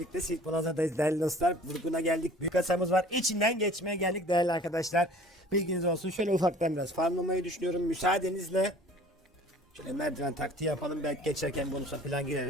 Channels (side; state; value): both; normal; correlation 0.49